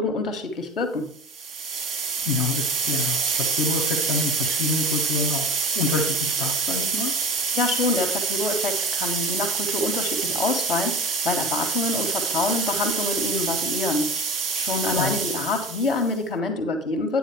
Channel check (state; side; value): normal; both; correlation 0.34